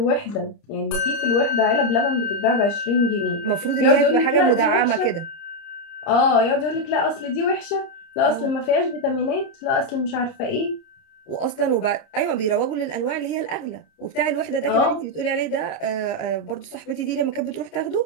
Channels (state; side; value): late; right; 30 ms